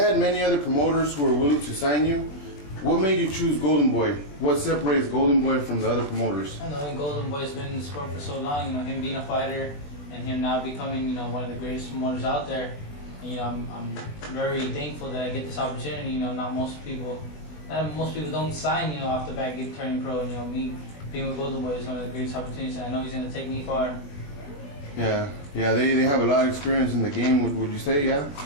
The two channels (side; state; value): right; late; 21 ms